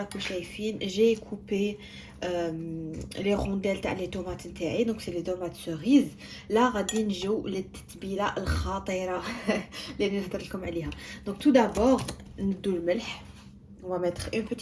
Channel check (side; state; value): both; identical; correlation 1.00